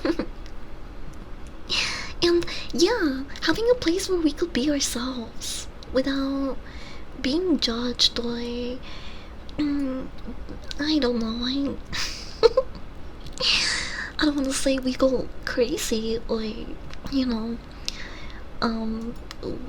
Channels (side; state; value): both; identical; correlation 1.00